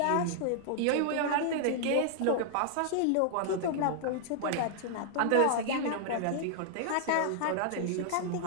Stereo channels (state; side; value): different; both; correlation -0.01